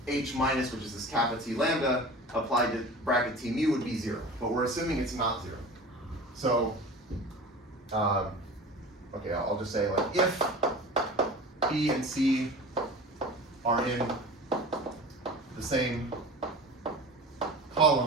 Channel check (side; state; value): both; normal; correlation 0.37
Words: h minus, which is this kappa t lambda, applied to bracket t mu would be 0. But we're assuming it's not 0. So, okay, I'll just say, like, if b and c are in the same